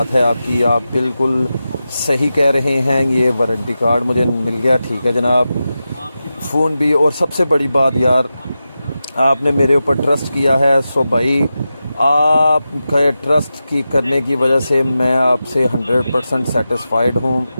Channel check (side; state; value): both; inverted; correlation -0.92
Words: है आपकी, आप बिल्कुल सही कह रहे हैं, ये वारंटी कार्ड मुझे मिल गया, ठीक है जनाब, फ़ोन भी। और सबसे बड़ी बात यार आपने मेरे ऊपर ट्रस्ट किया है। सो भाई आपका ट्रस्ट की करने की वजह से मैं आपसे 100% सेटिस्फाइड हूँ